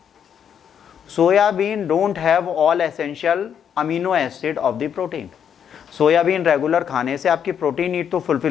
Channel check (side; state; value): right; quieter; 8.3 dB